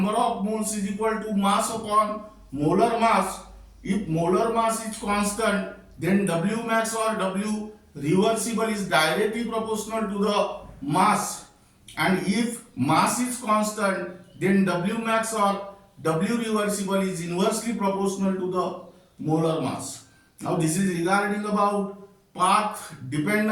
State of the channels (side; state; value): both; identical; correlation 1.00